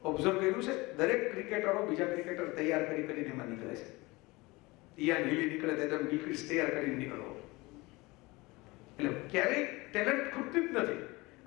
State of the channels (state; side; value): quieter; right; 22.9 dB